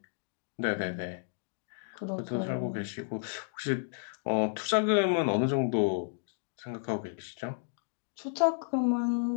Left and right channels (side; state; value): right; silent; digital silence